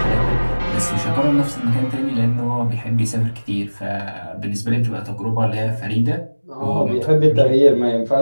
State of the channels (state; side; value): inverted; both; correlation -1.00